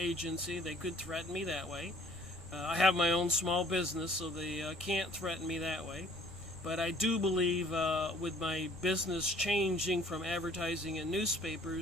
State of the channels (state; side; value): normal; both; correlation 0.56